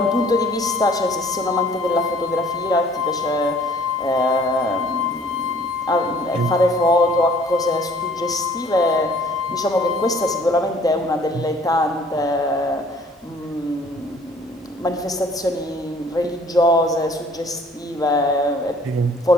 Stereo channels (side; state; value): both; normal; correlation 0.56